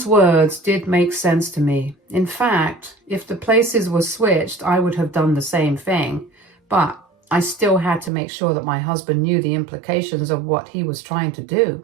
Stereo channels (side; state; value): left; drops out; at 8.1 s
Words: words did make sense to me. In fact, if the places were switched, I would have done the same thing. But I still had to make sure that my husband knew the implications of what he was trying to do.